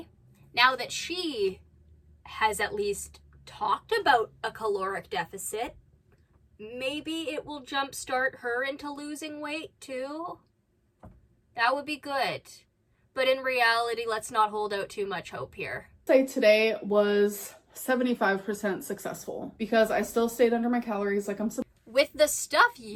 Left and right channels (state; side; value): identical; both; correlation 1.00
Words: now that she has at least talked about a caloric deficit, maybe it will jumpstart her into losing weight too. That would be good. But in reality, let's not hold out too much hope here. Say today was 75% successful because I still stayed under my calories like I'm supposed. With the stuff